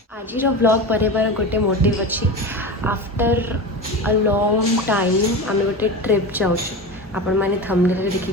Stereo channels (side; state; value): both; normal; correlation 0.26